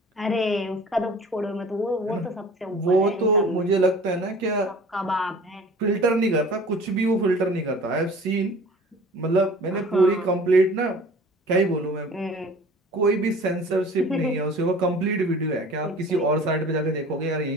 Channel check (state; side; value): normal; both; correlation 0.45